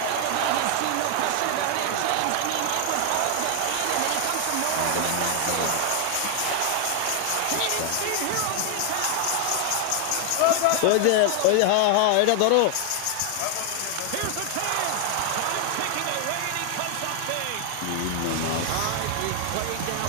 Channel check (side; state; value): both; different; correlation 0.00